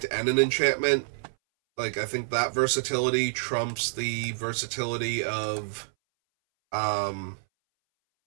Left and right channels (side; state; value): left; silent; 60 dB below the other